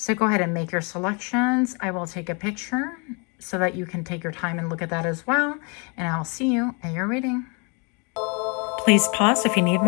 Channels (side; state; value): right; quieter; 33.5 dB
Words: go ahead and make your selections. I will take a picture so that you can take your time and look at that as well. And I'll see you at your reading. Please pause if you need